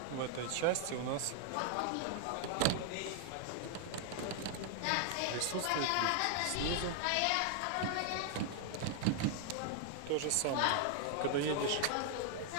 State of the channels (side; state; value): both; different; correlation 0.00